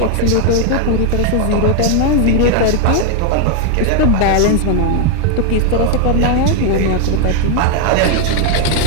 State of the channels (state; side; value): different; both; correlation 0.00